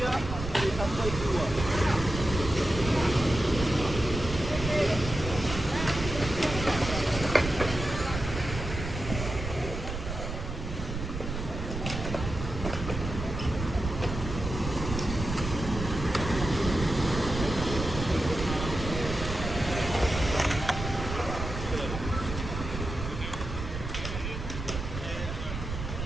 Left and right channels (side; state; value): right; noise; rumble, 6 dB below the sound